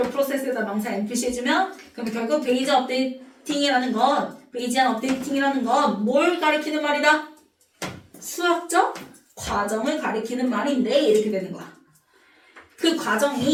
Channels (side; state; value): both; identical; correlation 1.00